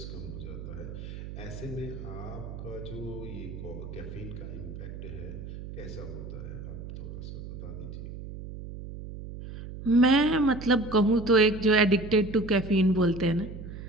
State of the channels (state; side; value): noise; right; hum, 10 dB below the sound